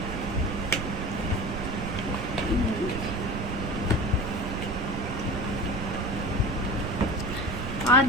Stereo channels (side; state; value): right; noise; rumble, 5 dB below the sound